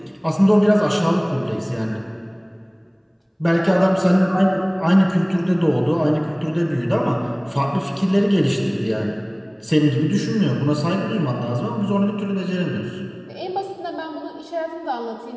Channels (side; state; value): both; identical; correlation 1.00